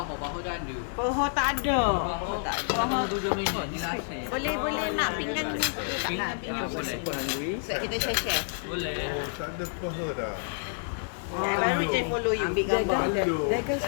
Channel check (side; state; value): right; silent; digital silence